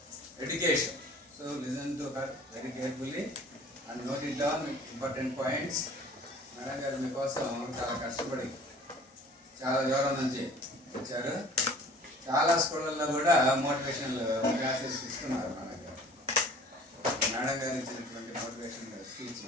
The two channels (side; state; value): both; normal; correlation 0.48